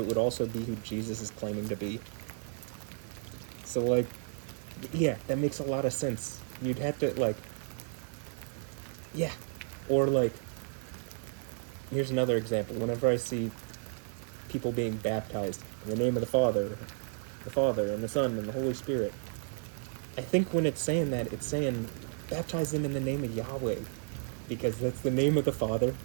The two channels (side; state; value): left; silent; 56 dB below the other